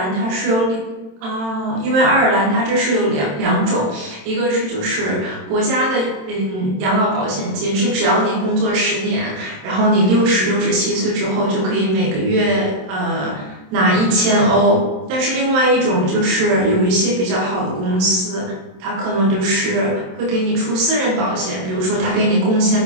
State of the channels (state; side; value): late; left; 27 ms